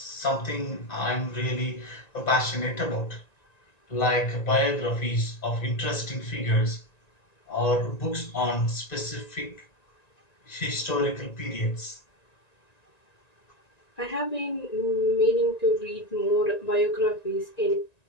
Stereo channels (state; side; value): late; right; 1.9 ms